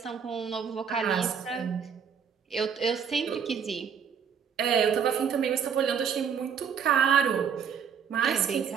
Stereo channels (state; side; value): quieter; left; 7.2 dB